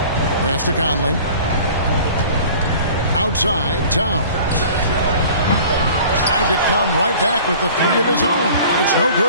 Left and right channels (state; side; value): inverted; both; correlation -0.46